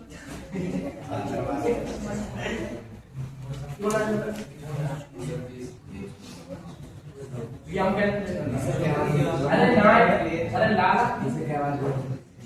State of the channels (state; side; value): identical; both; correlation 1.00